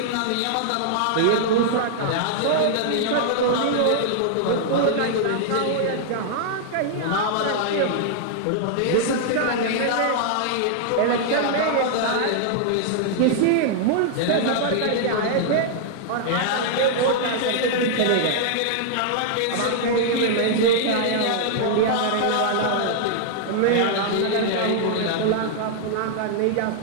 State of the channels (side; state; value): both; different; correlation -0.01